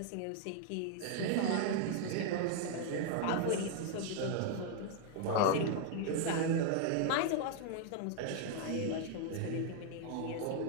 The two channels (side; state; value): both; different; correlation 0.00